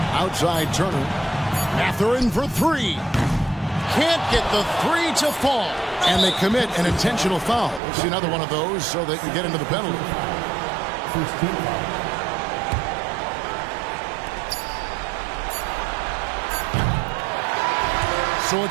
Outside Turner. Mathurin for 3. Can't get the 3 to fall. And they commit an intentional foul. We'll see another one of those so they can get into the penalty. So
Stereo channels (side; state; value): left; drops out; at 7.8 s